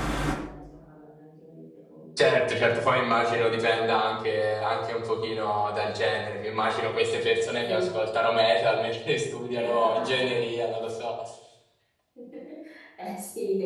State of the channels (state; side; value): identical; both; correlation 1.00